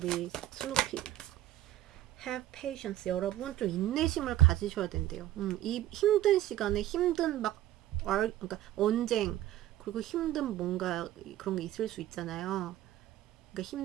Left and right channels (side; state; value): left; quieter; 13.6 dB